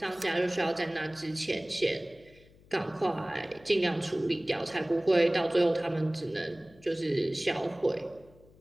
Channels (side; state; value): left; noise; hum, 26 dB below the sound